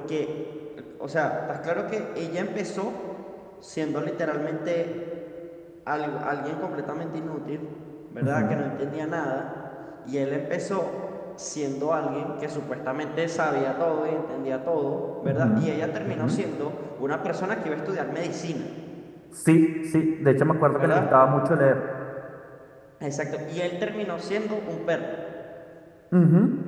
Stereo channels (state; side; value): identical; both; correlation 1.00